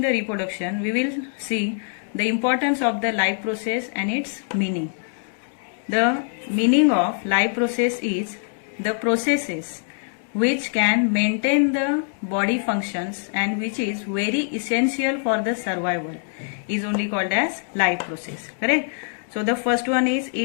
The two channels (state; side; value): silent; right; digital silence